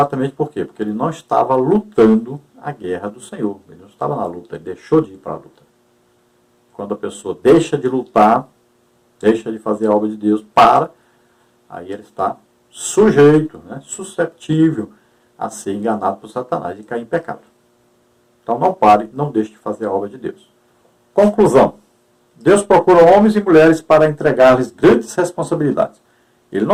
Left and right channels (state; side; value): identical; both; correlation 1.00